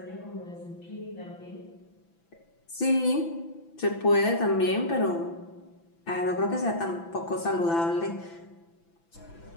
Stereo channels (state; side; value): late; right; 6.0 ms